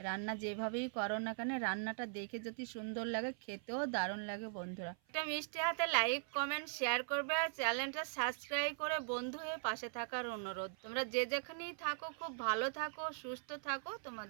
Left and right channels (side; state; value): left; silent; 51 dB below the other